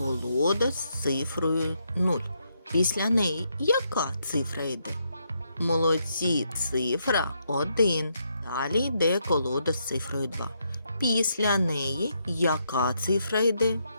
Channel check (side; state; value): both; inverted; correlation -0.78